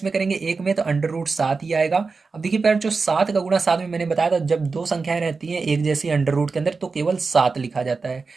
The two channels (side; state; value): left; quieter; 4.4 dB